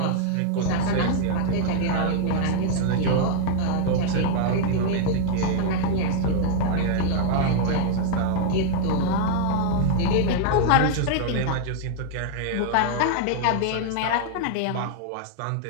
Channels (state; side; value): different; both; correlation -0.01